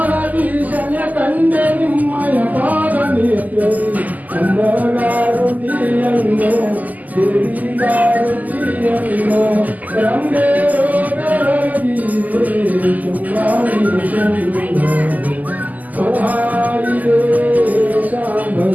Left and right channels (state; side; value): late; left; 0.080 ms